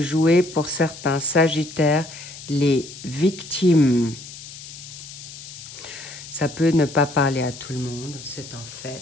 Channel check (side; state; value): left; noise; hiss, 14 dB below the sound